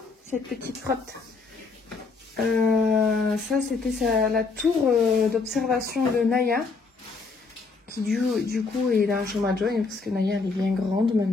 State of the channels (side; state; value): right; quieter; 4.4 dB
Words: cette petite frotte. Ça c'était la tour d'observation de Naya, qui du coup est dans la chambre à Joy, parce que Naya elle est bien grande